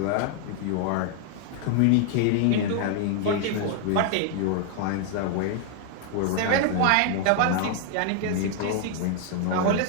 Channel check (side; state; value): both; different; correlation 0.00